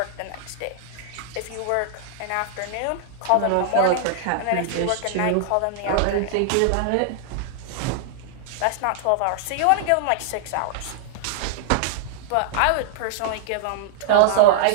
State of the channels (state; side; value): different; both; correlation -0.01